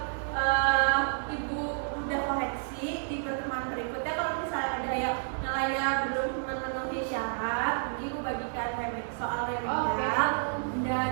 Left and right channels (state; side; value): silent; left; digital silence